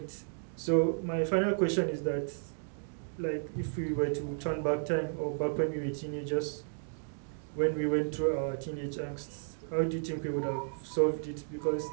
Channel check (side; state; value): left; silent; digital silence